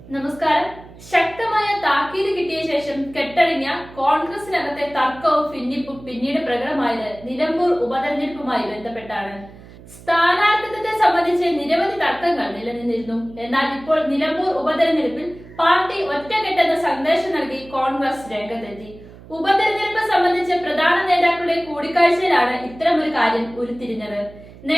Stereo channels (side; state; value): right; noise; hum, 19 dB below the sound